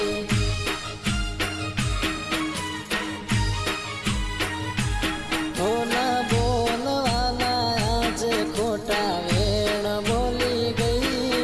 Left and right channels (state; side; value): identical; both; correlation 1.00